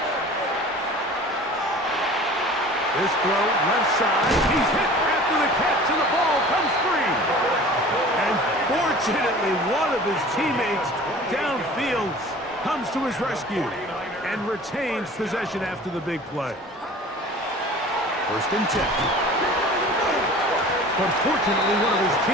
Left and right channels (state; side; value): normal; both; correlation 0.43